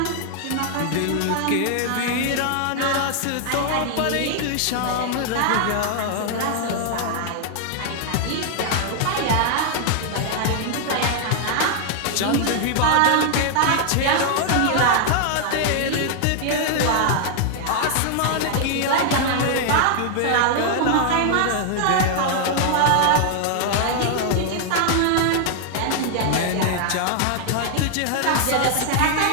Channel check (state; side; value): different; both; correlation 0.00